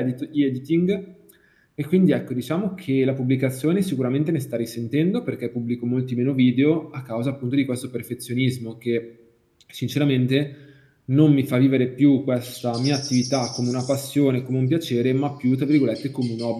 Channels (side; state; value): both; identical; correlation 1.00